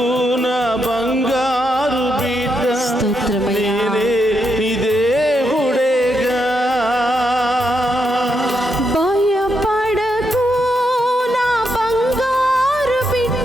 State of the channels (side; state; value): both; normal; correlation 0.81